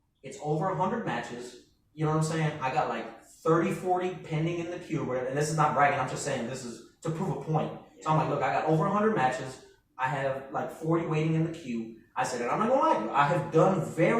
It's over 100 matches. You know what I'm saying? I got like 30, 40 pending in the queue or whatever. And this is not bragging. I'm just saying this is to prove a point. So I'm like, "Look, I got over 100 matches. I have like 40 waiting in the queue." I said, "And I'm not going to lie to you. I have done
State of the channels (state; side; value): identical; both; correlation 1.00